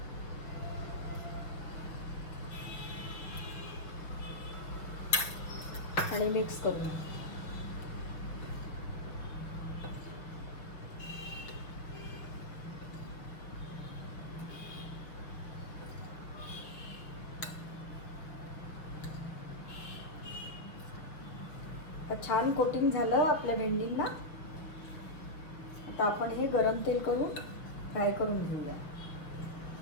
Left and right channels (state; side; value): late; right; 6.2 ms